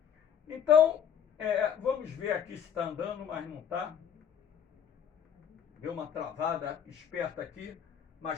Então, vamos ver aqui se está andando, mas não está. Deu uma travada esperta aqui,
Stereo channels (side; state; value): right; quieter; 8.4 dB